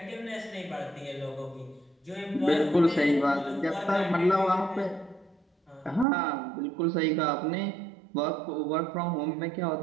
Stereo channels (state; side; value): drops out; left; at 6.1 s